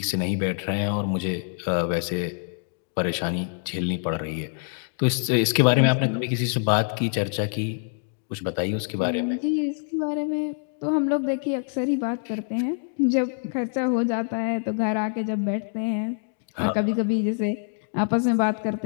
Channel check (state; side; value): silent; right; digital silence